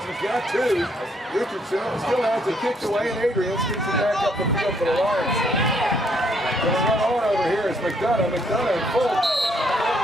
got two. Richardson still has it kicked away, and Adrian kicks it back up the field for the Lions. Going to run on over here is McDonough. McDonough in full.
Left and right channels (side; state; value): both; normal; correlation 0.70